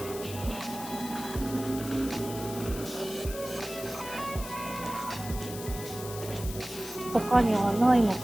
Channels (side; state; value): left; noise; hiss, 11 dB below the sound